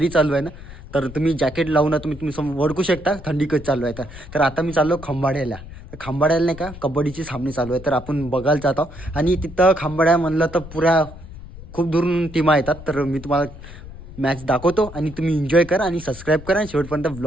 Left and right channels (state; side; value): noise; left; rumble, 15 dB below the sound